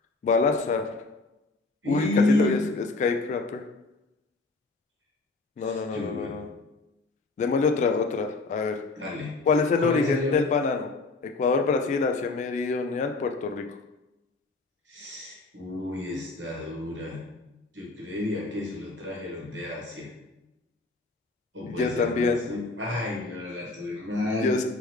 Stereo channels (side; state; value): right; quieter; 3.5 dB